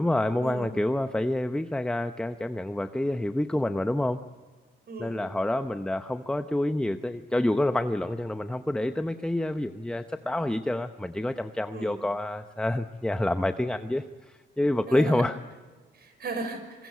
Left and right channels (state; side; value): normal; both; correlation 0.95